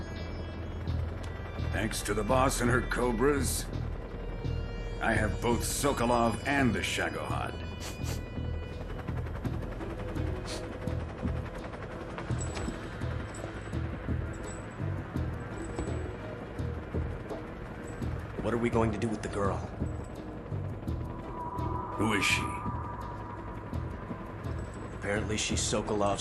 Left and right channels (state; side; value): identical; both; correlation 1.00